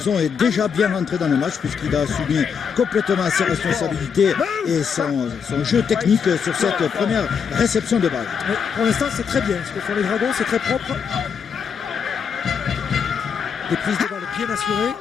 est déjà bien rentré dans le match puisqu'il a assumé complètement ses responsabilités et son jeu technique sur cette première réception de balle. Mais pour l'instant, c'est très bien. Ce que font les Dragons, c'est très propre. Des prises de balle bien assurées.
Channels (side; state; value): right; quieter; 6.6 dB